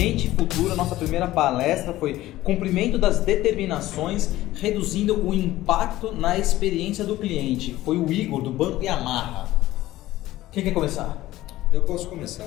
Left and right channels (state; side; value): quieter; right; 15.9 dB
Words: e futura. Nossa primeira palestra foi cumprimento das determinações, reduzindo o impacto na experiência do cliente. Foi o Igor, do Banco Yamaha. Quem quer começar? Eu posso começar.